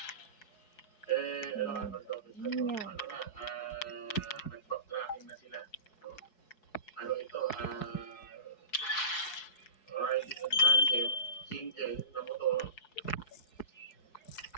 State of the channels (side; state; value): right; late; 4.7 ms